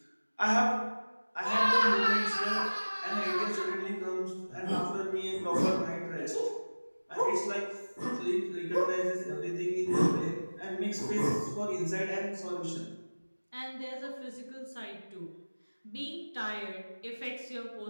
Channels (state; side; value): inverted; both; correlation -1.00